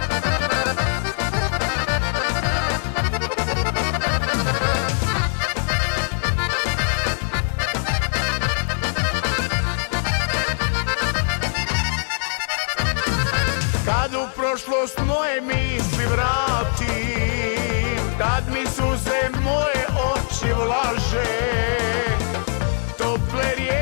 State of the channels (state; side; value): silent; right; 64 dB below the other